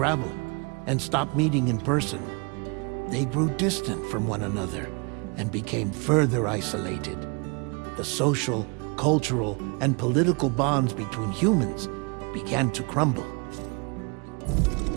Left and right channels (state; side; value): quieter; left; 31.9 dB